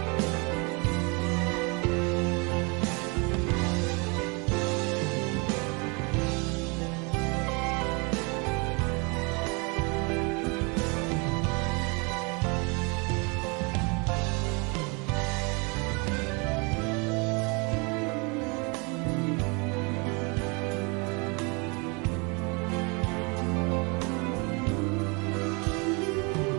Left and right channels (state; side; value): quieter; left; 31.2 dB